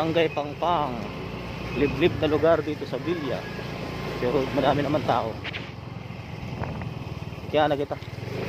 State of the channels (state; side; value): identical; both; correlation 1.00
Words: Pangpang, liblib na lugar dito sa Villa, pero marami naman tao. Kaya na kita.